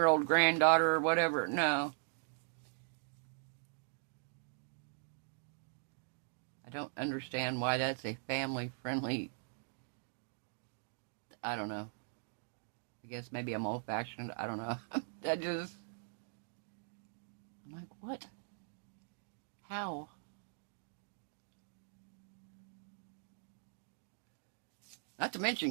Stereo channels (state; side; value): silent; left; digital silence